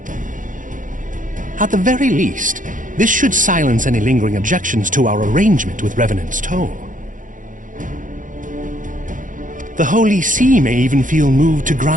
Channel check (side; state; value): left; late; 0.38 ms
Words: At the very least, this should silence any lingering objections to our arrangement with Revenant's Toll. The Holy See may even feel moved to